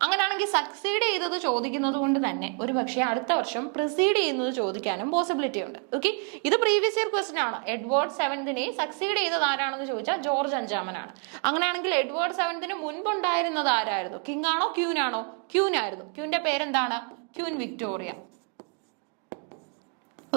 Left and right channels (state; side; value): quieter; left; 39.5 dB